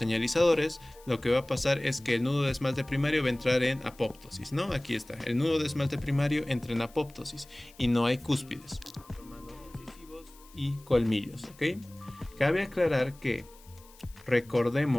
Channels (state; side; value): noise; left; hiss, 25 dB below the sound